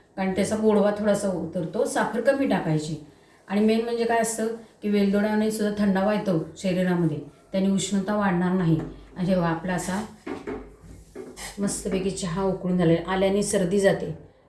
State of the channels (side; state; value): both; identical; correlation 1.00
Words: कारण त्याचा गोडवा थोडासा उतरतो. साखर कमी टाकायची. आणि मेन म्हणजे काय असतं की वेलदोड्याने सुद्धा थंडावा येतो शरीरामध्ये, त्याने उष्णता वाढणार नाही. आणि जेव्हा आपला असा मस्तपैकी चहा उकळून झालेला, आल्याने सर्दी जाते